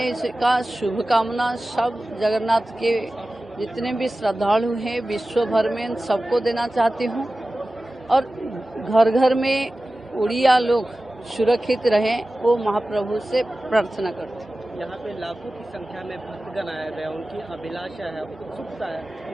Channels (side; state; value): both; normal; correlation 0.96